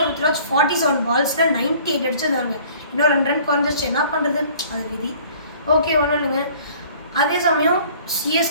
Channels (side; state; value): both; inverted; correlation -0.52